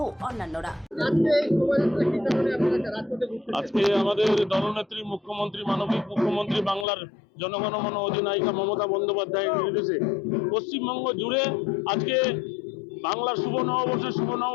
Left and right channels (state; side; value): drops out; right; at 6.9 s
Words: অন্যান্যরা। আজকে আমাদের দলনেত্রী মুখ্যমন্ত্রী, মানবিক মুখ্যমন্ত্রী, বাংলার জনগণমন অধিনায়িকা মমতা বন্দ্যোপাধ্যায়ের নির্দেশে পশ্চিমবঙ্গ জুড়ে আজকে বাংলার শুভ